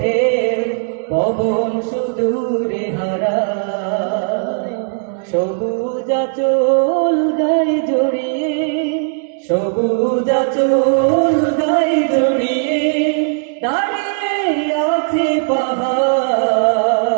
ঢেউ, পবন সুদূরে হারায়। সবুজ আঁচল গায়ে জড়িয়ে, সবুজ আঁচল গায়ে জড়িয়ে দাঁড়িয়ে আছে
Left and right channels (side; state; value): left; silent; digital silence